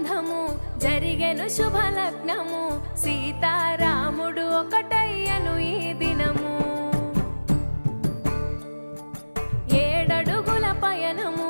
జరిగెను శుభలగ్నము సీతారాముడు ఒకటయ్యను ఈ దినము 7 అడుగుల పయనము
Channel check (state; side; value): inverted; both; correlation -1.00